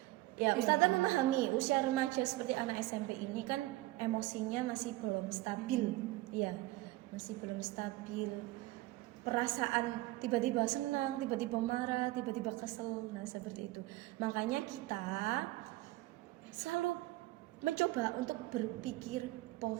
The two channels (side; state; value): left; quieter; 18.6 dB